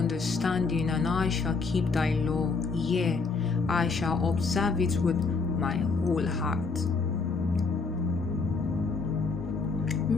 and I shall keep thy law. Yea, I shall observe it with my whole heart.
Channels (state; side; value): quieter; right; 4.4 dB